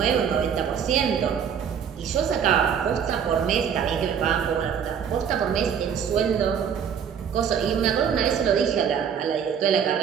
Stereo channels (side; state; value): left; quieter; 7.7 dB